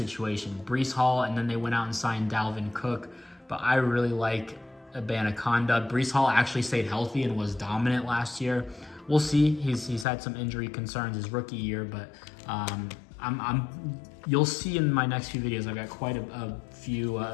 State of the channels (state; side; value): drops out; right; at 10.1 s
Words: Breece Hall, and then they went out and signed Dalvin Cook. But I really like Abanaconda. Breece Hall actually stayed healthy and was dominant last year. We'll see. He's had some injury concerns his rookie year, but you'll see in my next few videos. I've got quite a few